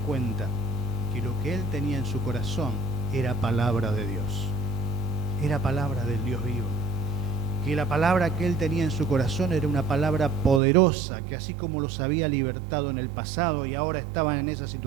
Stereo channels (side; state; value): left; drops out; at 10.6 s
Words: que lo que él tenía en su corazón era palabra de Dios, era palabra del Dios vivo, que la palabra que él tenía en su corazón era una palabra poderosa, que así como los había libertado en el pasado y ahora estaban en esa